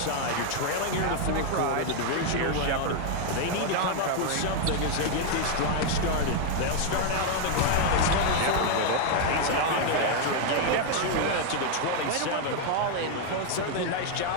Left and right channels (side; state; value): both; different; correlation 0.00